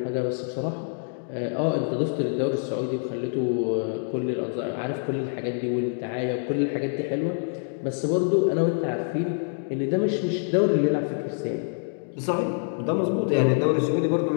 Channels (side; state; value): right; silent; digital silence